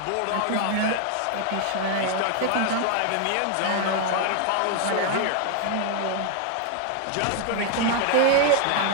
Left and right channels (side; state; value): both; different; correlation 0.00